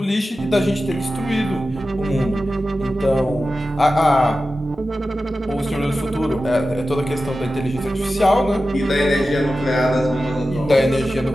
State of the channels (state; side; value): normal; both; correlation 0.93